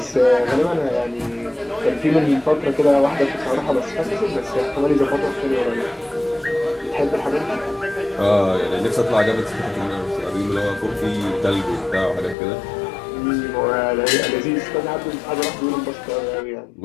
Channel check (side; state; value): right; drops out; at 12.4 s